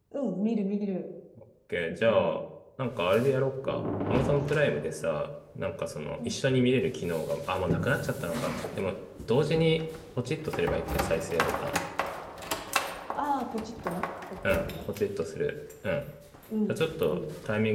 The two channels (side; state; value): both; identical; correlation 1.00